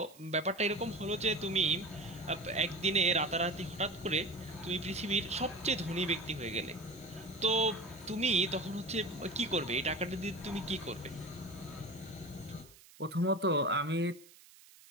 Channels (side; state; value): right; noise; hiss, 23 dB below the sound